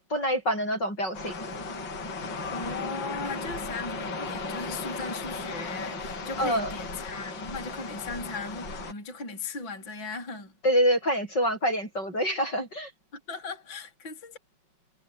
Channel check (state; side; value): late; right; 5.4 ms